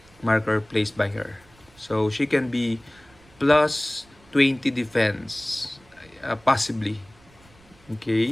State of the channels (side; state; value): right; noise; rumble, 28 dB below the sound